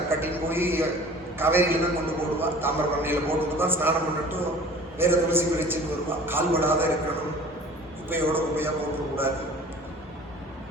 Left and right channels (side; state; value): both; normal; correlation 0.45